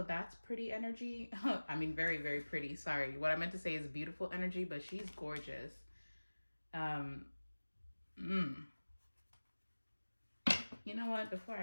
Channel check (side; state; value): both; inverted; correlation -1.00